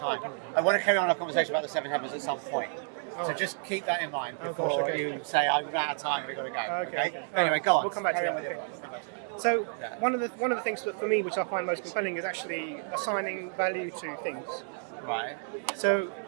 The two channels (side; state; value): left; silent; 58 dB below the other